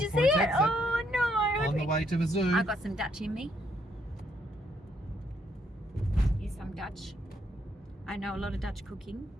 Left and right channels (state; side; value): normal; both; correlation 0.73